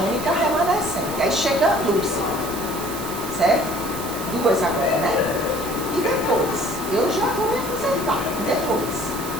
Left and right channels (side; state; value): right; noise; hiss, 10 dB below the sound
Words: remanescente. Aí chega a Lúcia, certo? 2 agora, né? E depois, eu já vou me aposentar, depois,